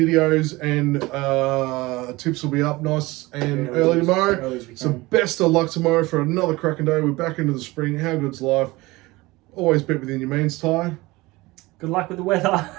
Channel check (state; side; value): quieter; left; 21.2 dB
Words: and tips will be up nice and early tomorrow. So best of luck tomorrow for another cracking day. We're back into the spring. How good's life? Always bet within your means, Ty. Good luck with the weather.